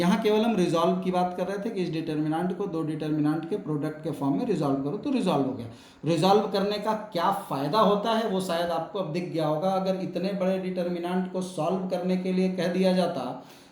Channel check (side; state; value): both; identical; correlation 1.00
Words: केवल हम रिजॉल्व की बात कर रहे थे कि इस डिटर्मिनेंट को दो डिटर्मिनेंट के प्रोडक्ट के फॉर्म में रिजॉल्व करो, तो रिजॉल्व हो गया। रिजॉल्व करने का क्या फ़ायदा होता है वो शायद आपको अब दिख गया होगा। अगर इतने बड़े डिटर्मिनेंट को सॉल्व करने के लिए कह दिया जाता,